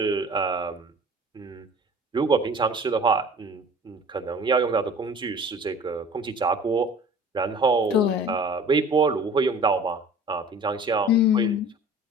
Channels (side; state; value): both; normal; correlation 0.45